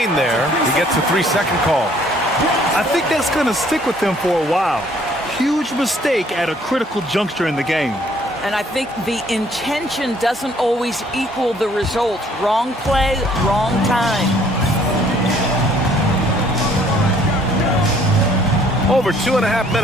there. He gets a 3-second call. I think that's going to stick with them for a while. Huge mistake at a critical juncture in the game. And I think the intention doesn't always equal the result. Wrong play, wrong time. Over 2.5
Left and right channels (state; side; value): normal; both; correlation 0.61